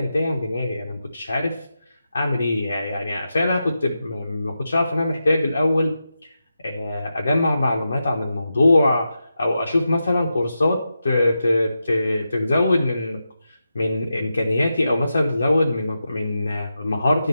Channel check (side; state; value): both; inverted; correlation -0.89